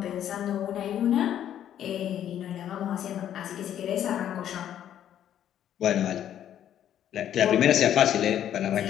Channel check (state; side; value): quieter; right; 10.6 dB